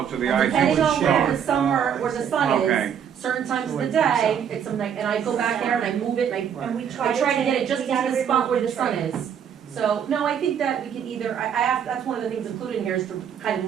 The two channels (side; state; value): left; quieter; 8.3 dB